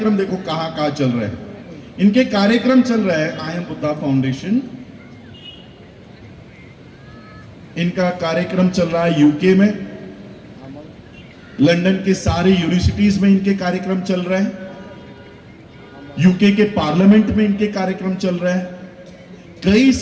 देखो कहां कहां चल रहे हैं। इनके कार्यक्रम चल रहे हैं आई एम बुद्धा फाउंडेशन, इनका कार्यक्रम चल रहा है यूके में, लंदन के सारे यूनिवर्सिटीज में इनके कार्यक्रम चल रहे हैं, यूके के पार्लियामेंट में इनके कार्यक्रम चल रहे हैं। कई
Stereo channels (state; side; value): identical; both; correlation 1.00